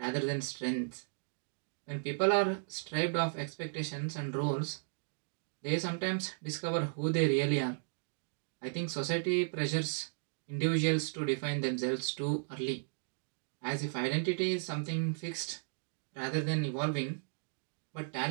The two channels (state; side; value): silent; left; digital silence